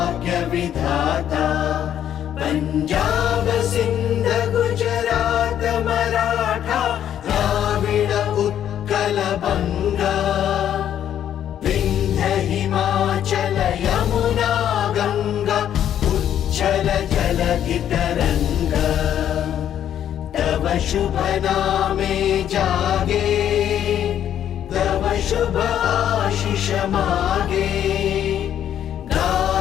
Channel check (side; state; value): right; quieter; 10.3 dB